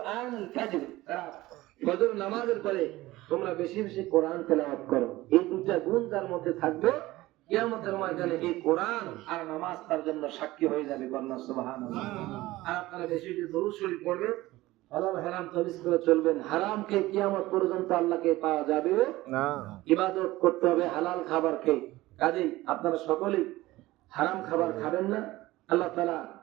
ফাজর, ফজর নামাজের পরে তোমরা বেশি বেশি কোরআন তেলাওয়াত করো। এই দুইটা গুণ যার মধ্যে থাকবে, কিয়ামতের ময়দানে এই কোরআন আর নামাজ তার জন্য সাক্ষী হয়ে যাবে, কন্যা সুবহানাল্লাহ। আর আপনারা বেশি বেশি দরুদ শরীফ পড়বেন, হালাল হারাম তামিজ করে চলবেন। হারামকে কিয়ামত পর্যন্ত আল্লাহকে পাওয়া যাবে না, ইবাদত করতে হবে হালাল খাবার খেয়ে। কাজেই আপনারা সকলেই হারাম খাবার খাবেন না। আল্লাহ তাআলা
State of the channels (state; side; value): quieter; left; 18.0 dB